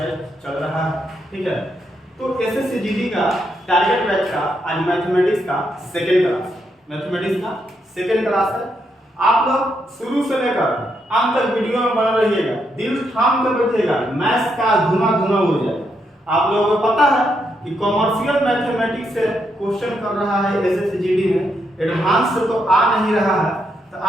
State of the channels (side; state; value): both; normal; correlation 0.79